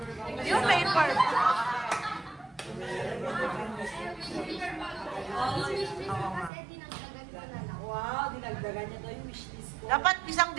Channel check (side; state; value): left; drops out; at 6.5 s